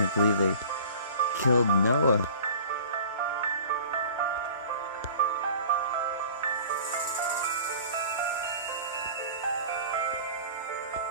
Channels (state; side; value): inverted; both; correlation -0.43